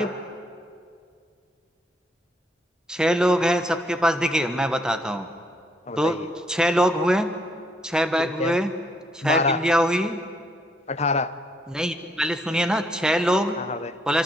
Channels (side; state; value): both; normal; correlation 0.71